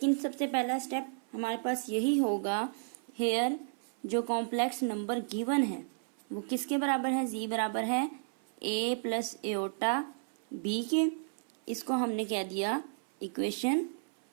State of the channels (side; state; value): left; silent; 56 dB below the other